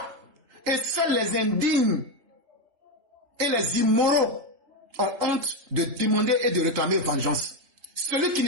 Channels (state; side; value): late; left; 3.8 ms